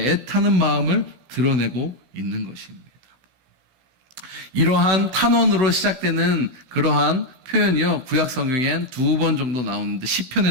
애타는 마음을 드러내고 있는 것입니다. 이러한 탄원으로 시작되는 그러한 표현이요, 구약 성경엔 2번 정도 나오는데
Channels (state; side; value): late; left; 16 ms